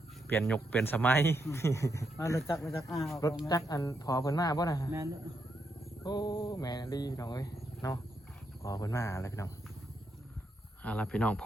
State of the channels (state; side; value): normal; both; correlation 0.80